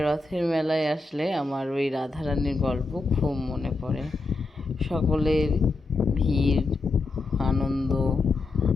রথের মেলায় আসলে আমার ওই রাধারানীর গল্প খুব মনে পড়ে। সকলের ভিড়, আনন্দ।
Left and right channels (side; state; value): right; quieter; 3.4 dB